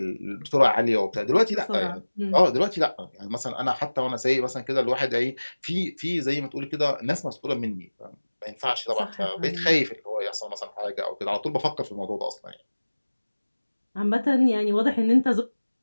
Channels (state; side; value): inverted; both; correlation -1.00